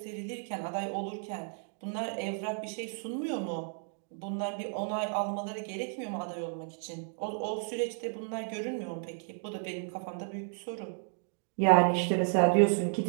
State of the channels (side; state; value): left; silent; 56 dB below the other